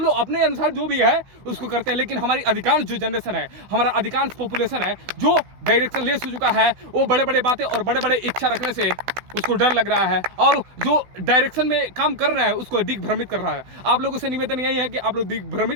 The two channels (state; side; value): late; left; 16 ms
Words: लोग अपने अनुसार जो भी है उसको करते हैं। लेकिन हमारी अधिकांश जो जनरेशन है, हमारा अधिकांश पॉपुलेशन है जो डायरेक्शन लेस हो चुका है, वो बड़े बड़े बातें और बड़े बड़े इच्छा रखने से उसको डर लग रहा है, और जो डायरेक्शन में काम कर रहा है उसको दिग्भ्रमित कर रहा है। आप लोगों से निवेदन यही है कि आप लोग